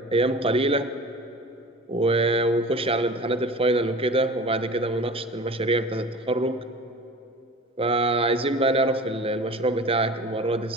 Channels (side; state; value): both; normal; correlation 0.38